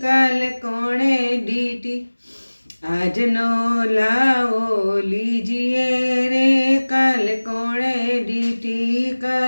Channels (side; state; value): both; inverted; correlation -1.00